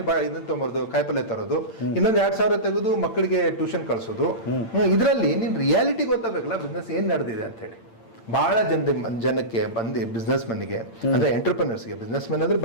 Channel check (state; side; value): late; right; 8.8 ms